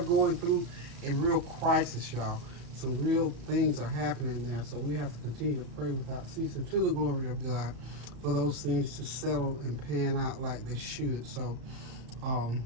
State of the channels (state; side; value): late; left; 34 ms